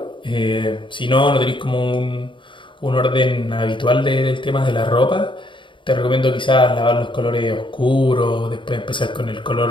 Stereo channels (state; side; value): late; right; 0.24 ms